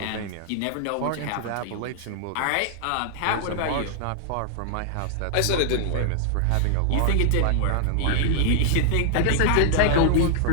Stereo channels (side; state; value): both; different; correlation -0.01